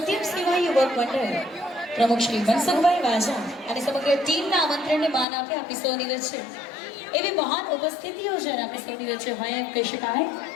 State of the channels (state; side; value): drops out; right; at 5.2 s